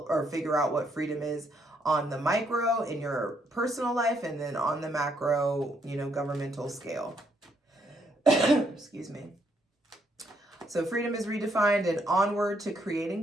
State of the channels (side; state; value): both; normal; correlation 0.73